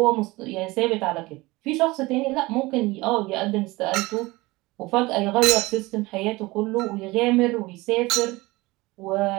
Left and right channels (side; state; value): left; quieter; 21.6 dB